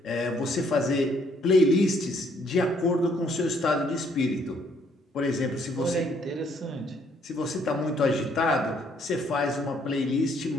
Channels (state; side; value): normal; both; correlation 0.67